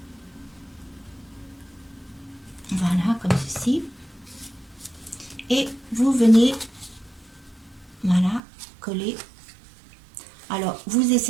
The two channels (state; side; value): drops out; left; at 8.4 s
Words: Voilà, comme ceci. Et vous venez, voilà, coller. Alors, vous